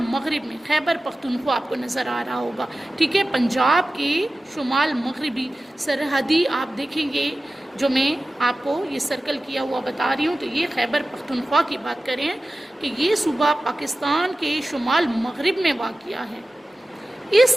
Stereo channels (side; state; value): both; normal; correlation 0.95